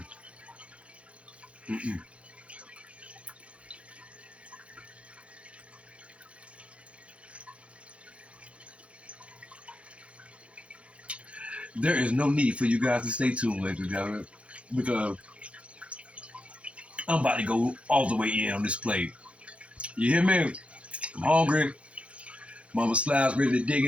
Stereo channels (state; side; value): late; left; 0.062 ms